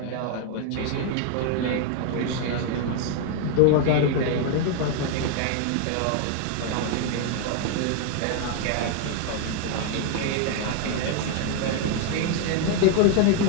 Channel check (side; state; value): both; different; correlation 0.00